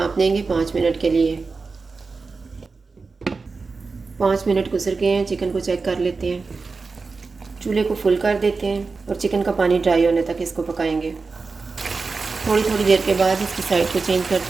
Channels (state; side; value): quieter; left; 4.3 dB